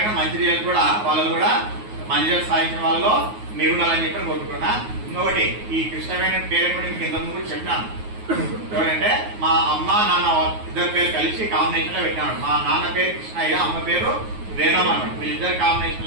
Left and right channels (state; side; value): late; left; 9.4 ms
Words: మంచి రిజల్ట్ కూడా వాళ్ళు కూడా మంచి రిజల్ట్ సాధించిన వాళ్ళలో మీరు ఉండాలని చెప్పి కోరుకుంటున్నా. ఇంకొకటి, ఈ కృష్ణవేణి పేరు కూడా మీకు ఇంతకుముందు కూడా చెప్పినాను. ఎవరంటే మా అమ్మ నాన్న ఇద్దరు పేరు కలిసి కాంబినేషన్ లో పెట్టినాడు. మా నాన్న పేరు కృష్ణయ్య, అమ్మ పేరు వేణమ్మ అన్నాడు. వీళ్ళిద్దరు